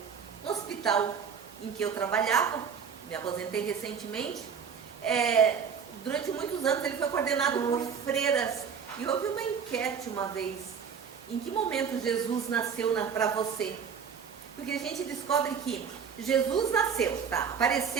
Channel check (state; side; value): quieter; left; 6.8 dB